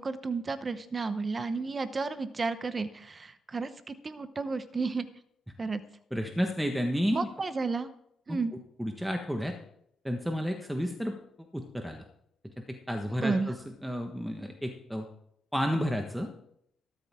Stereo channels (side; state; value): both; normal; correlation 0.93